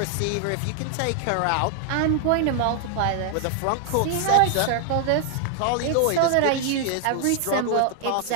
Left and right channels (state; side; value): different; both; correlation 0.00